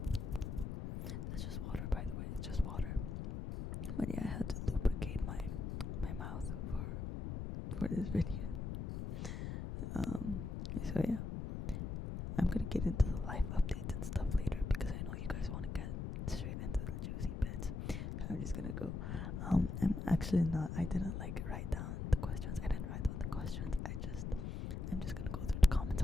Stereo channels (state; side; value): noise; left; rumble, 4 dB below the sound